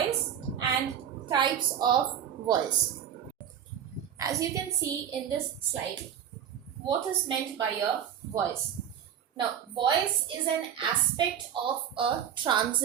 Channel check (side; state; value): left; quieter; 9.1 dB